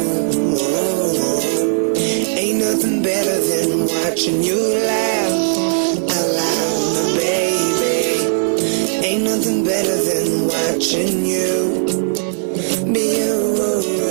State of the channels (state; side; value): silent; left; digital silence